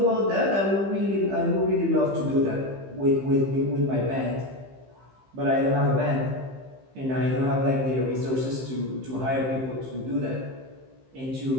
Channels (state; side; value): late; left; 15 ms